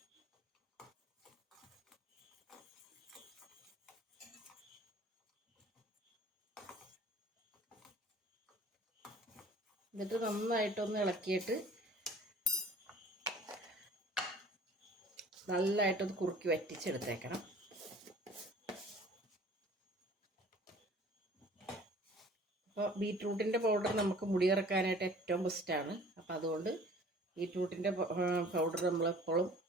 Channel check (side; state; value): both; normal; correlation 0.48